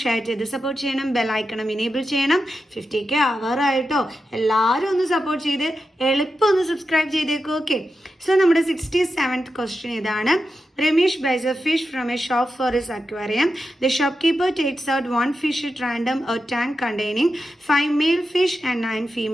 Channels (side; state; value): both; normal; correlation 0.89